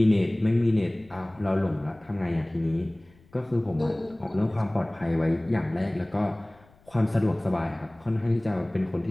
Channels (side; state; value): left; noise; rumble, 28 dB below the sound